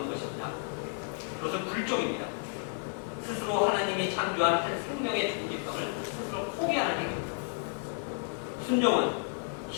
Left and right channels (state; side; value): silent; right; 57 dB below the other